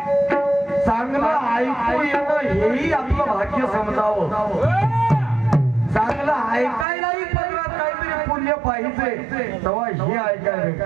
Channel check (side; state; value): left; drops out; at 6.9 s